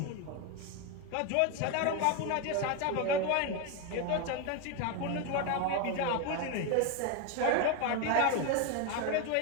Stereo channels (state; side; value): different; both; correlation 0.02